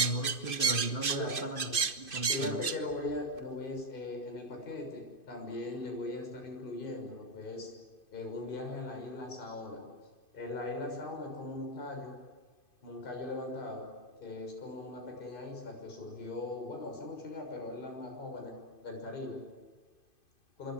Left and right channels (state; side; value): late; right; 2.5 ms